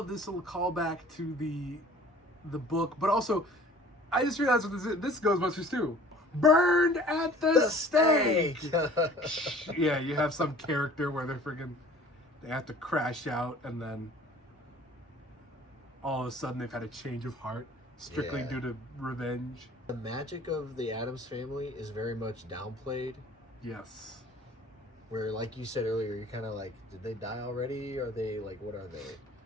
this little callback to the book, but also, I just realized what this Ghostbusters too. Burned at the stake. Yeah, you have some character where they have to crash out, and then all of a sudden they've had a change of heart strictly due to revenge. The magic of the Addams Family is very much downplayed. Yes. Where, like you said earlier, you're kind of like, did they die already? Are they like, what are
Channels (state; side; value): normal; both; correlation 0.49